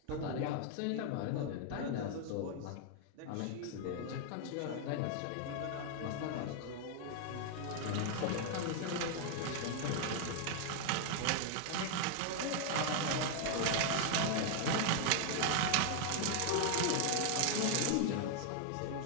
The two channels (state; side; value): different; both; correlation 0.00